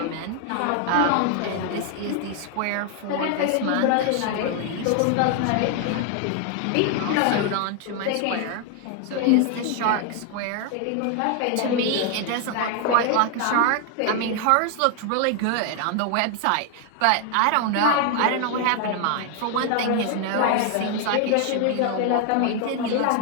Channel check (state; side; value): different; both; correlation 0.00